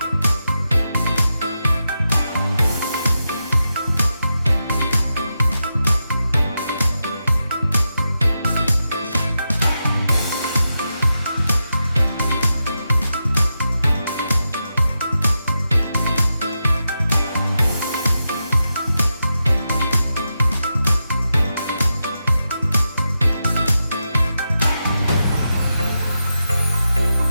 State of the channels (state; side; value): inverted; both; correlation -0.88